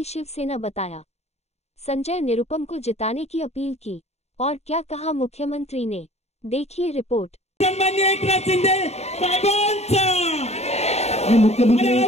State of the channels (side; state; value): right; late; 0.31 ms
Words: शिवसेना बताया। संजय निरुपम को जिताने की अपील की और क्या कहा मुख्यमंत्री ने, देखिए रिपोर्ट। सन्माननीय एकनाथ शिंदे साहेबांचा मुख्यमंत्री